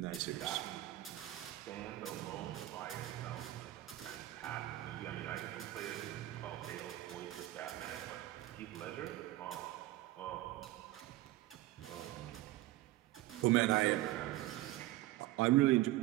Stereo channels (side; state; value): left; quieter; 16.2 dB